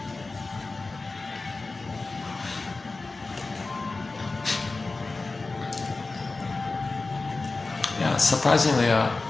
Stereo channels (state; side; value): quieter; right; 3.6 dB